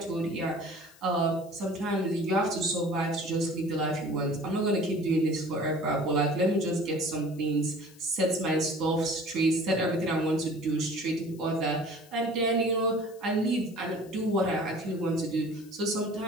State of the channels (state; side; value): noise; left; hiss, 25 dB below the sound